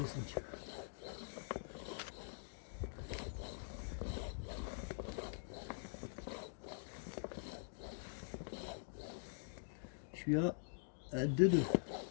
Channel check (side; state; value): right; silent; digital silence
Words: Je suis à 2,2.